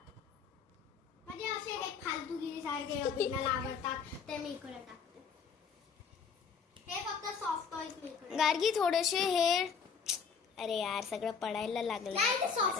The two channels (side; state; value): right; quieter; 6.1 dB